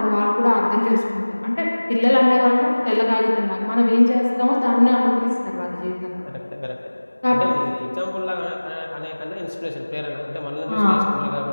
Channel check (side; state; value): both; inverted; correlation -1.00